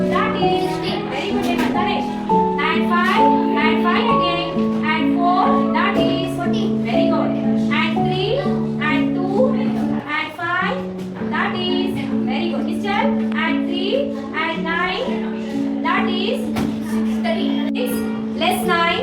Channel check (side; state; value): both; identical; correlation 1.00